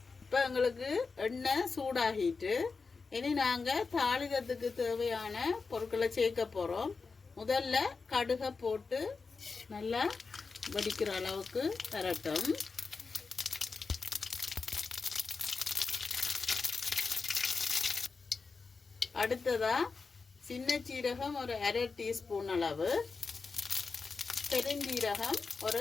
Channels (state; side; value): quieter; right; 4.6 dB